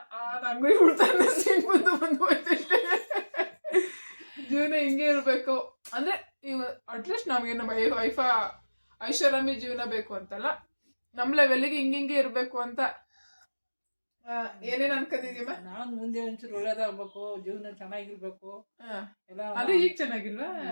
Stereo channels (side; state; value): both; inverted; correlation -1.00